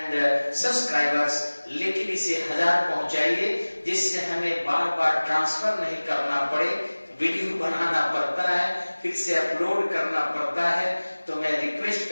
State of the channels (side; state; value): both; inverted; correlation -1.00